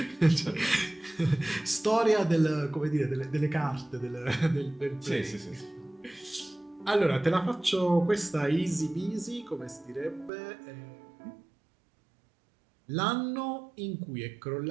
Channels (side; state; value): left; drops out; at 10.3 s